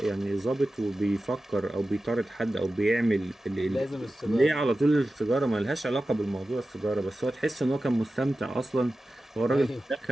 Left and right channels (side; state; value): both; normal; correlation 0.94